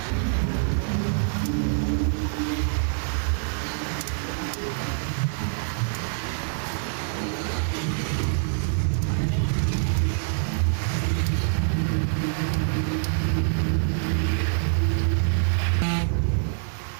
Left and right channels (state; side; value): silent; left; 61 dB below the other